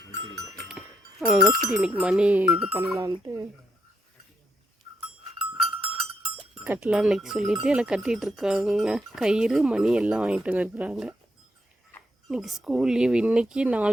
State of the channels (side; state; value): both; normal; correlation 0.78